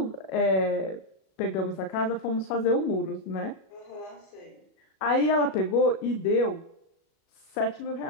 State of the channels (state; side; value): late; right; 37 ms